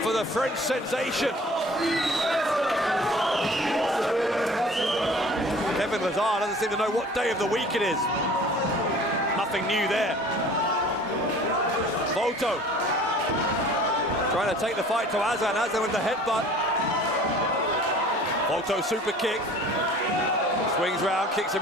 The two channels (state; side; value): normal; both; correlation 0.48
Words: for the French sensation. Kevin Lazar doesn't seem to know what day of the week it is. Nothing new there. Volto trying to take the fight to Aslan. Aslan with the headbutt. Volto super kick. Swings round, kicks